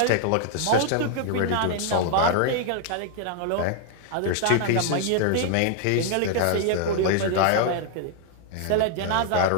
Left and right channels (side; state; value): both; different; correlation 0.00